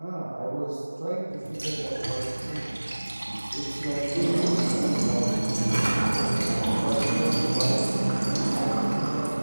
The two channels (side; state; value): both; inverted; correlation -1.00